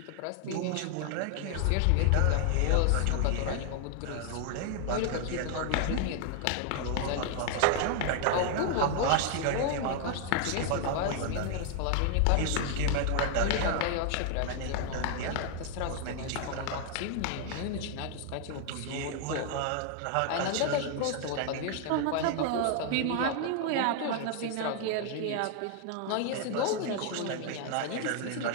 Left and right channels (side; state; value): both; different; correlation 0.00